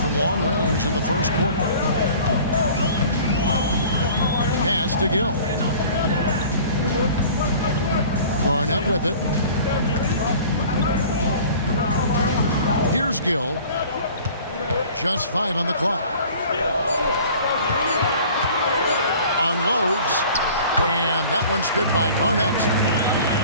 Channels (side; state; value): both; inverted; correlation -0.46